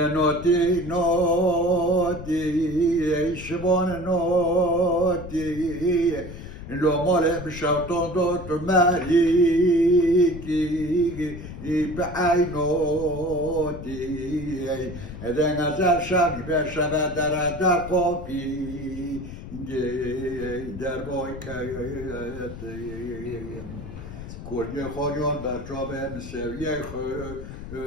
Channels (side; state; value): left; noise; rumble, 11 dB below the sound